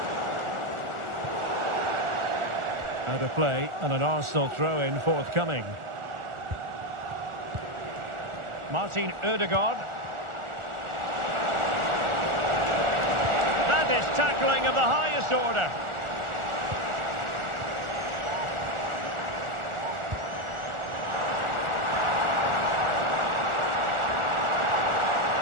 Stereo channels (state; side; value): late; left; 1.4 ms